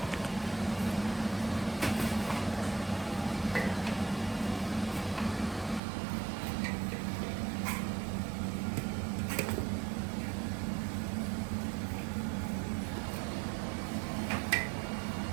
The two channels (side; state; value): left; drops out; at 5.8 s